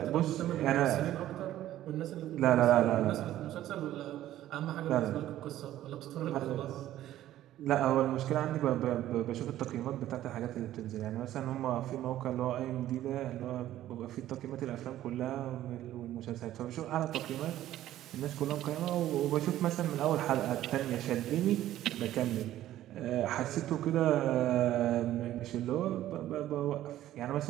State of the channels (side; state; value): left; quieter; 13.4 dB